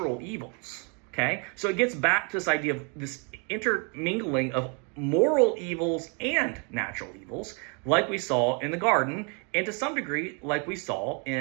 evils, okay? So it gets back to this idea of this intermingling of moral evils and natural evils, like we saw in the garden, and to some degree like we saw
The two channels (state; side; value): quieter; left; 35.3 dB